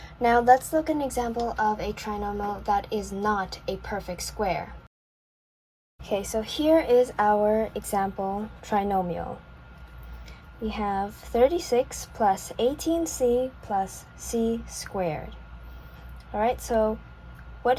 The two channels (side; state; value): both; identical; correlation 1.00